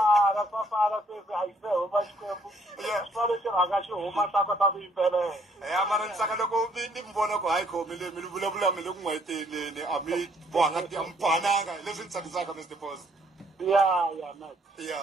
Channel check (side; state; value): both; normal; correlation 0.65